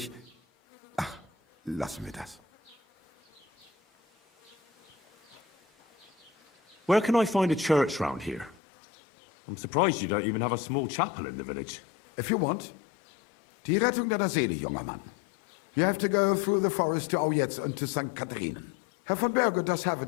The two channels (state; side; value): drops out; right; at 8.6 s